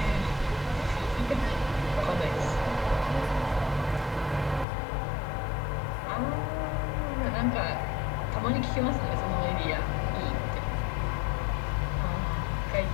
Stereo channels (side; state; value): right; drops out; at 4.7 s